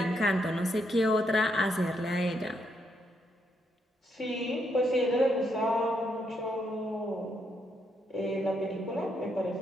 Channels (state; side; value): normal; both; correlation 0.77